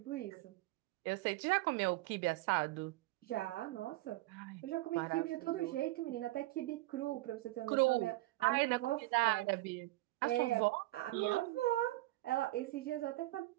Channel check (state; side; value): quieter; left; 18.7 dB